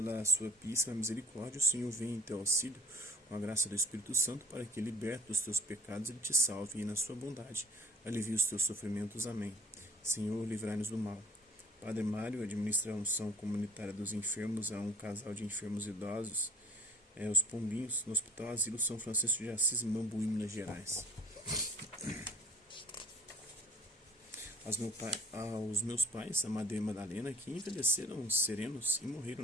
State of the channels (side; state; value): both; normal; correlation 0.49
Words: sua píssima misericórdia, o Senhor vem em teu auxílio, com a graça do Espírito Santo, para que, liberto dos teus pecados, ele te salve e, na sua bondade, alivie os teus sofrimentos. Amém. Senhor, livrai-nos do mal. Padre Mário administra a unção comunitária dos enfermos a um casal de enfermos idosos, os Pombinhos, no Hospital Asilo São Francisco de Assis, em Mambuí, Minas Gerais. Aos meus pais, Amadeu e Madalena, que envelheceram serenos e morreram